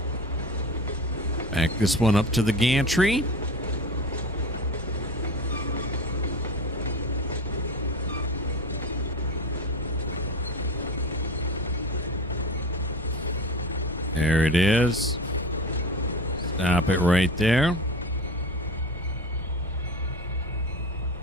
Back this one up to the gantry. There it is. Stop it right there.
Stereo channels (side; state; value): both; normal; correlation 0.31